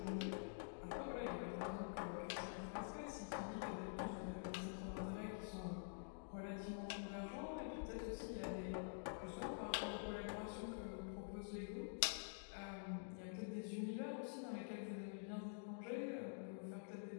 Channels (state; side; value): silent; right; digital silence